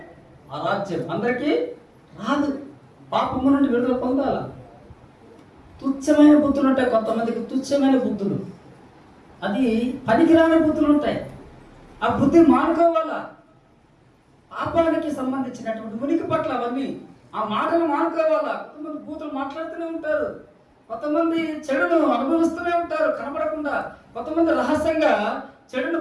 ఆ రాజ్యం, అందరికీ రాదు. పాపము నుండి విడుదల పొందాల. తుచ్చమైన బుద్ధులు ఉంటాయి కొంతమందికి, తుచ్చమైన బుద్ధులు, అది పనికిరాని బుద్ధులు ఉంటాయి. ఆ బుద్ధి మానుకోవాలా. పాపానికి సంబంధించినటువంటి ఉనికి పట్ల అవన్నీ ఆ మాటలు మానుకోవాలా. కొంతమంది బూతులు మాట్లాడుతూనే ఉంటారు, కొంతమంది చెడును అనుభవిస్తూనే ఉంటారు కనబడకుండా, కొంతమంది రహస్యంగా చెడును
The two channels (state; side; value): identical; both; correlation 1.00